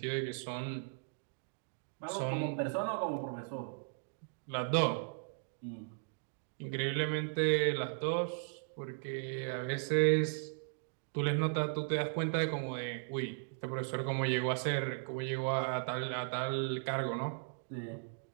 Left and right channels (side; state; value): left; silent; digital silence